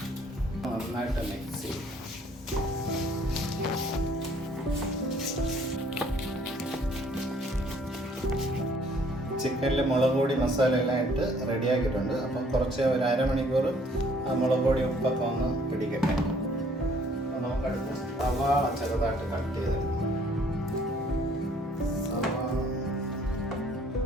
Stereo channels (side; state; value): both; normal; correlation 0.61